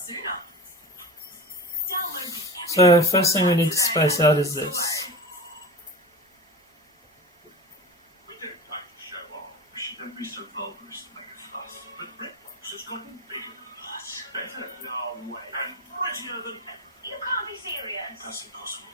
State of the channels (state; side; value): normal; both; correlation 0.30